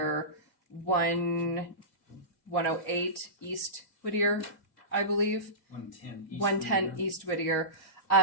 108 East Whittier, I believe. 110 East Whittier.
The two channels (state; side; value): late; right; 2.2 ms